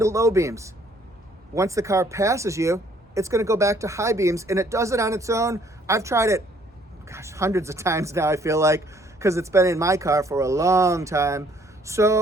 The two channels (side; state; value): both; normal; correlation 0.63